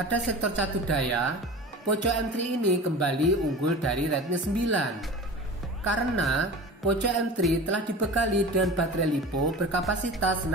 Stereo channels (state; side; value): normal; both; correlation 0.35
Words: sektor catur daya, Poco M3 ini kembali unggul dari Redmi 9 karena Poco M3 telah dibekali dengan baterai LiPo berkapasitas